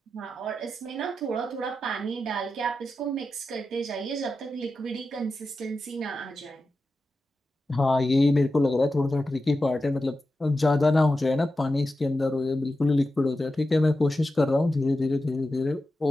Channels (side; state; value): both; normal; correlation 0.91